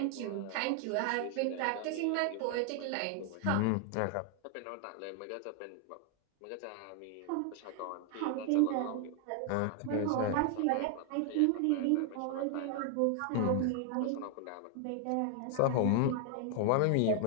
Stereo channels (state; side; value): different; both; correlation 0.00